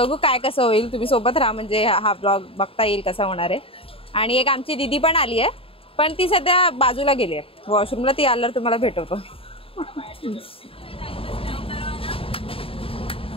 काय कसं होईल. तुम्ही सोबत राहा, म्हणजे हा ब्लॉग बघता येईल कसा होणार आहे. आणि एक आमची दीदी पण आली आहे, पण ती सध्या बाजूला गेली आहे वॉशरूमला. ती आल्यावर तुम्हाला भेटवतो.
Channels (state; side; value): late; right; 0.27 ms